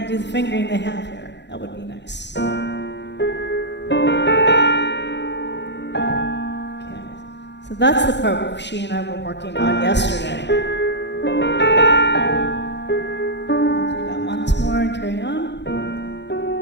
Do the fingering they have here. That would be nice. that's the part she and I were working on yesterday. I'll do that once more and carry on.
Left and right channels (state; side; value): late; right; 0.51 ms